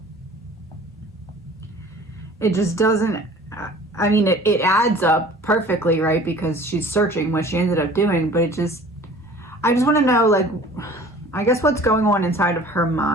it just doesn't, I mean, it adds up perfectly, right? Because she's searching what she ended up doing, but I just want to know, like, I guess what's going on inside of her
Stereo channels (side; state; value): both; normal; correlation 0.47